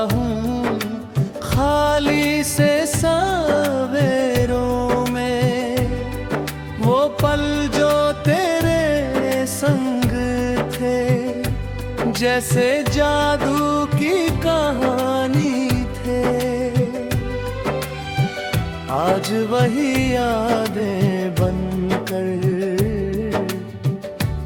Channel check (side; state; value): both; identical; correlation 1.00